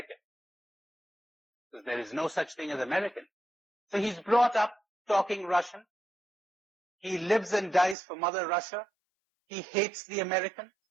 Because there is no such thing as American. So he's brought up talking Russian. He lives and dies for Mother Russia. He hates the Americans.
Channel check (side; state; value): left; drops out; at 8.0 s